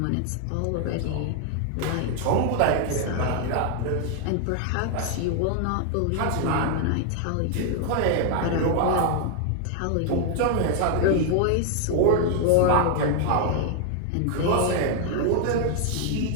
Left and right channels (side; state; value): both; different; correlation 0.00